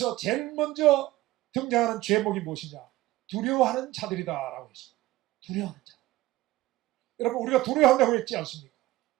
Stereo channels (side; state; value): left; quieter; 17.3 dB